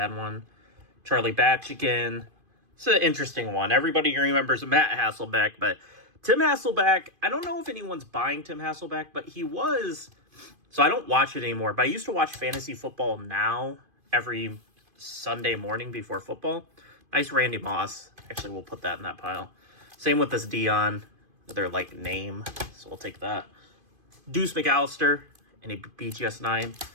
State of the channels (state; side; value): late; left; 2.5 ms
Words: one. Charlie Batch again. It's an interesting one. Everybody remembers Matt Hasselbeck, but Tim Hasselbeck, I don't know if anyone's buying Tim Hasselbeck, but he was. So I don't watch it anymore, but I used to watch Fantasy Football Now every Sunday morning before football. Nice Randy Moss. Actually, we'll put that in that pile. Same with this Dion. Their, like, name. So we'll take that. Deuce McAllister. And a BGS 9.